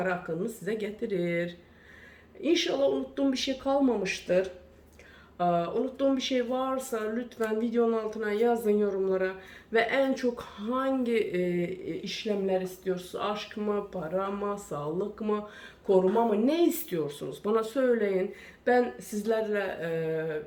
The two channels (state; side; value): identical; both; correlation 1.00